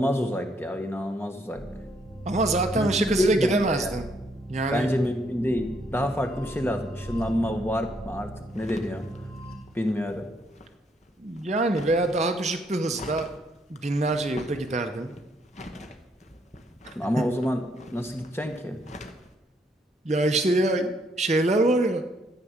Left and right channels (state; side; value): normal; both; correlation 0.72